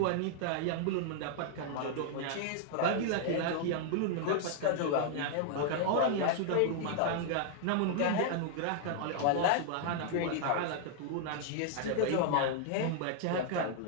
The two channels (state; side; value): different; both; correlation 0.00